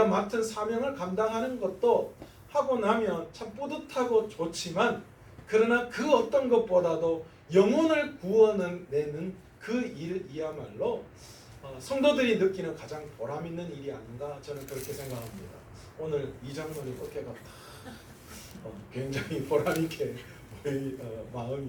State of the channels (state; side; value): identical; both; correlation 1.00